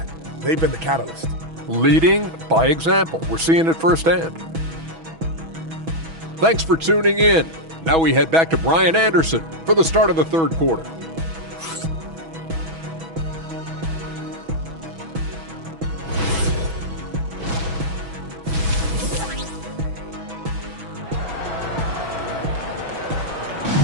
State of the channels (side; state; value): left; late; 6.1 ms